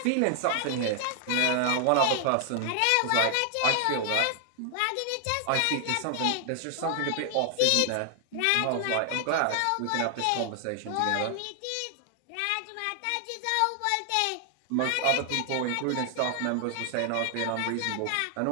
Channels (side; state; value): both; different; correlation 0.00